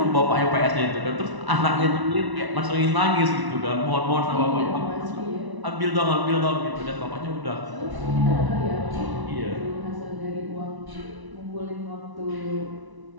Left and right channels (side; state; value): left; late; 1.0 ms